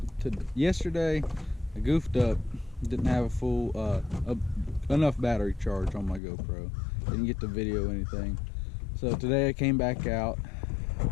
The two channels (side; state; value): right; drops out; at 6.2 s